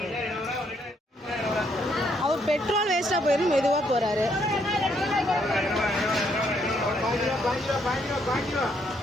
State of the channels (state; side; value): normal; both; correlation 0.72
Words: அவர் பெட்ரோல் வேஸ்ட்டாக போயிடும், மெதுவாக போகிறாரு.